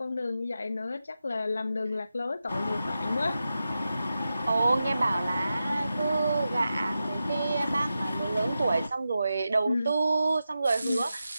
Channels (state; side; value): inverted; both; correlation -0.90